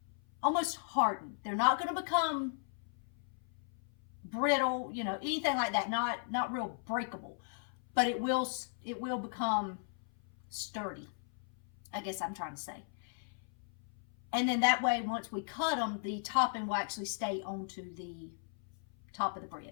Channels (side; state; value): right; silent; 53 dB below the other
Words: almost harden. They're not going to become brittle, you know, anything like that. Not real breakable, but it will become sturdy, I guess I'm trying to say. And then that way, once we cut them, the topping will actually stay onto the top of the bread.